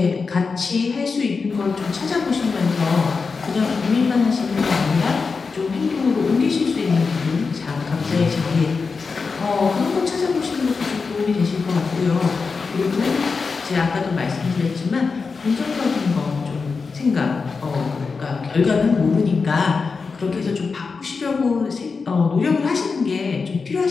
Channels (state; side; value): quieter; right; 4.8 dB